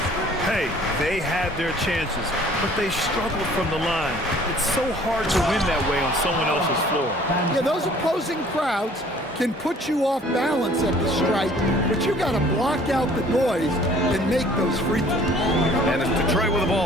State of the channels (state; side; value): normal; both; correlation 0.54